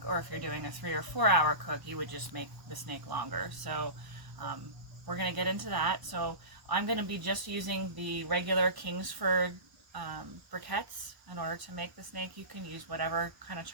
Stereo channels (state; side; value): late; left; 1.0 ms